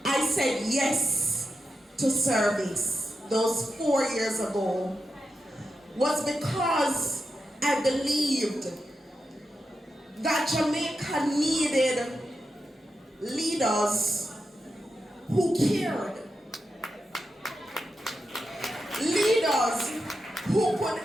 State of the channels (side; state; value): both; normal; correlation 0.88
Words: I said yes to service those 4 years ago was because I believed that Jamaica needed leaders who cared. Leaders who could